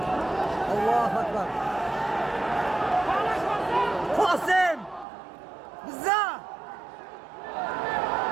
الله اکبر قاسم بزا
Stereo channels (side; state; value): left; drops out; at 5.1 s